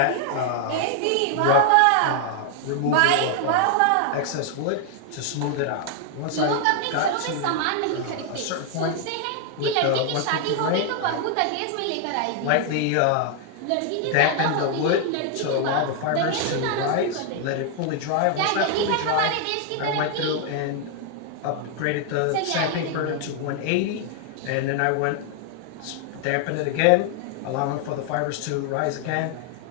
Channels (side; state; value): both; different; correlation 0.00